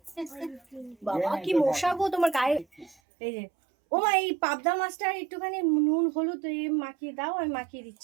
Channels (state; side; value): drops out; left; at 3.0 s